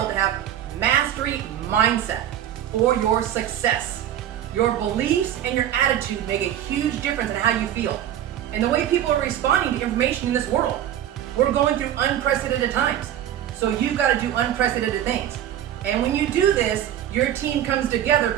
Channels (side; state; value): left; quieter; 11.1 dB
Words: to have mastery mindset for your success. Your beliefs and your attitude make a huge difference in how you feel and the way people are responding to information in this world. We're going through unprecedented times, so you've got to do unprecedented things. And when you do this, your team comes together